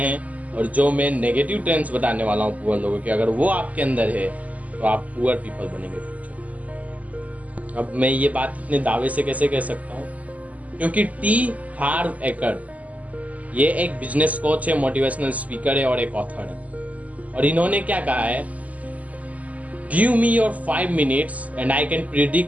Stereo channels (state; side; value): late; left; 0.073 ms